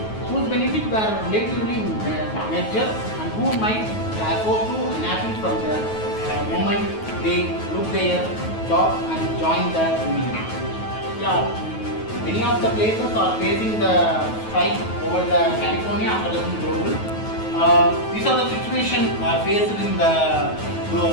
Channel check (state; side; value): late; right; 9.3 ms